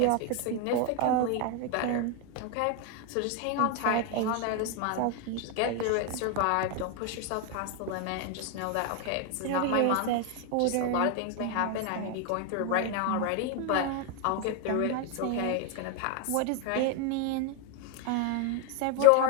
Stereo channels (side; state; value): both; different; correlation 0.01